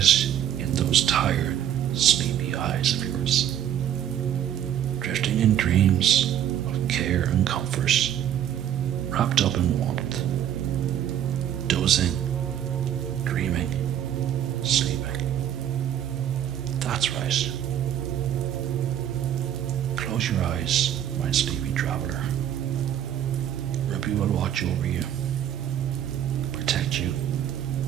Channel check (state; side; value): quieter; left; 10.4 dB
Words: in those tired, sleepy eyes of yours, drifting in dreams of care and comfort, wrapped up in warmth, dozing, dreaming, sleeping. That's right. Close your eyes, my sleepy traveler. Ruby will watch over you, protect you,